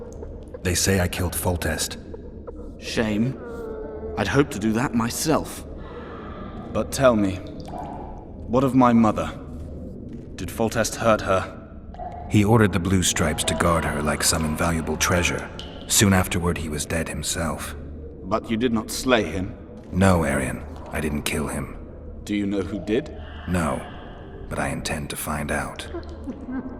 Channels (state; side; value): identical; both; correlation 1.00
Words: They say I killed Foltest. Shame. I'd hoped to do that myself. But tell me, what of my mother? Did Foltest hurt her? He ordered the Blue Stripes to guard her like some invaluable treasure. Soon afterward, he was dead himself. But you did not slay him? No, Arian. I didn't kill him. Do you know who did? No, but I intend to find out.